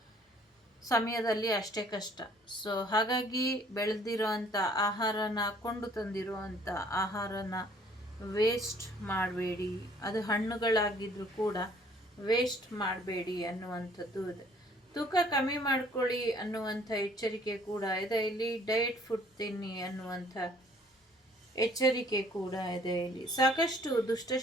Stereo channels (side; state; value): both; normal; correlation 0.58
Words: ಸಮಯದಲ್ಲಿ ಅಷ್ಟೇ ಕಷ್ಟ. ಸೊ ಹಾಗಾಗಿ ಬೆಳೆದಿರೋ ಅಂಥ ಆಹಾರನ, ಕೊಂಡು ತಂದಿರೋ ಅಂಥ ಆಹಾರನ ವೇಸ್ಟ್ ಮಾಡಬೇಡಿ. ಅದು ಹಣ್ಣುಗಳಾಗಿದ್ರೂ ಕೂಡ ವೇಸ್ಟ್ ಮಾಡಬೇಡಿ ಅನ್ನುವಂಥದ್ದು ಇದೆ. ತೂಕ ಕಮ್ಮಿ ಮಾಡ್ಕೊಳ್ಳಿ ಅನ್ನುವಂಥ ಎಚ್ಚರಿಕೆ ಕೂಡ ಇದೆ. ಇಲ್ಲಿ ಡಯಟ್ ಫುಡ್ ತಿನ್ನಿ ಅನ್ನುವಂಥ ಎಚ್ಚರಿಕೆ ಕೂಡ ಇದೆ. ಇಲ್ಲಿ ಸಾಕಷ್ಟು